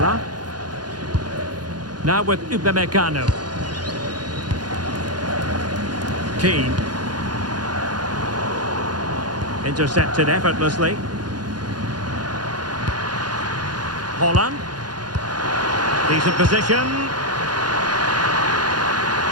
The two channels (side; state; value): left; late; 0.70 ms